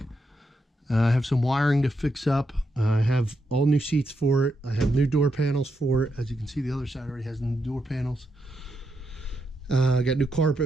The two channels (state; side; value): normal; both; correlation 0.83